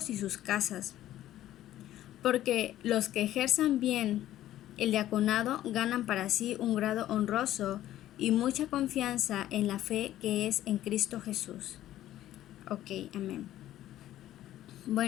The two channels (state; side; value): quieter; right; 13.3 dB